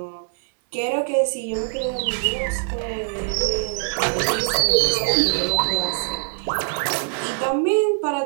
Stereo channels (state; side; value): silent; left; 62 dB below the other